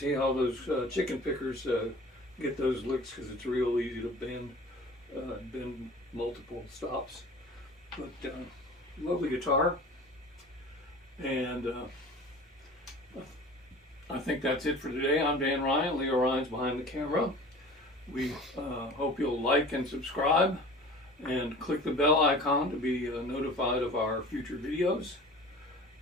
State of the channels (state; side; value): normal; both; correlation 0.41